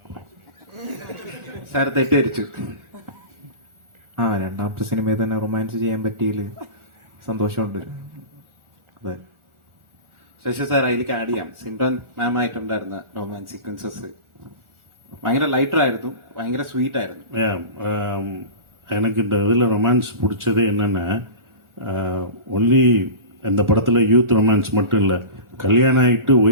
സാർ? തെറ്റിദ്ധരിച്ചു. രണ്ടാമത്തെ സിനിമയിൽ തന്നെ റൊമാൻസ് ചെയ്യാൻ പറ്റിയില്ല, സന്തോഷമുണ്ട്. അതെ. ശശി സാർ, അതിലേക്ക് ആഡ് ചെയ്യാം. സിൻഡോൻ മാം ആയിട്ടുണ്ടായിരുന്ന റൊമാൻസ് സീക്വൻസസ് ഭയങ്കര ലൈറ്റർ ആയിരുന്നു, ഭയങ്കര സ്വീറ്റ് ആയിരുന്നു. எனக்கு இந்த இதில் ரொமான்ஸ் பிடிச்சது என்னென்னா, ஒன்லி இந்த படத்தில் யூத் ரொமான்ஸ் மட்டும் இல்லை, கல்யாணம் ஆகிட்டு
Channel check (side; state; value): left; late; 1.4 ms